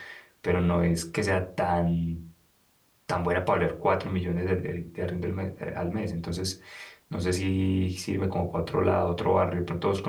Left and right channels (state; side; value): identical; both; correlation 1.00